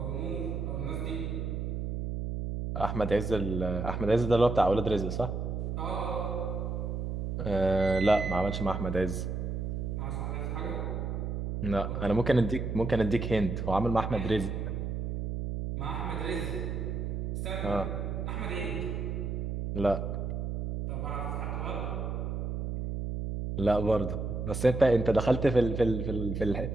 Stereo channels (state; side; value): noise; right; hum, 2 dB below the sound